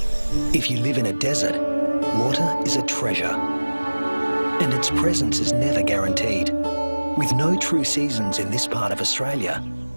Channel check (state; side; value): inverted; both; correlation -1.00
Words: If you live in a desert, water is a treasure, and its presence is never guaranteed. With no true seasons in this part of Australia,